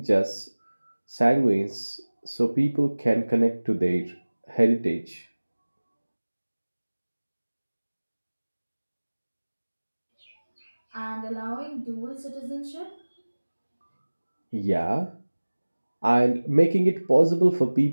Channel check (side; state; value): both; inverted; correlation -1.00